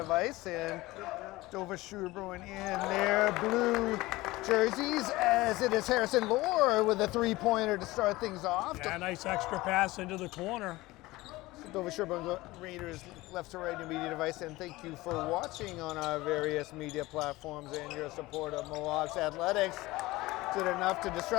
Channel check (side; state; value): right; quieter; 19.6 dB